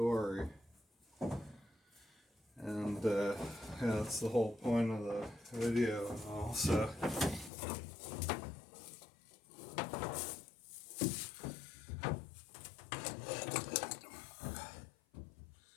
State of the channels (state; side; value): drops out; right; at 7.5 s